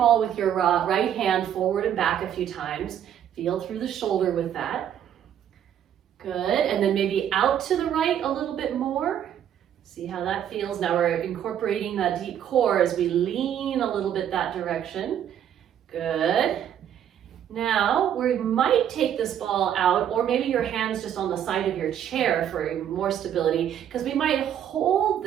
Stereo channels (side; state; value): left; quieter; 9.8 dB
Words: with your right hand forward and back a few times. Feel through the shoulder with that. Good, and then maybe out to the right a little bit more. See how that feels. Now we're incorporating that deep core as we lean a little bit that direction. Good. Now we might take this ball out, or maybe your hands just on the side of your chair for more stability, because we might hold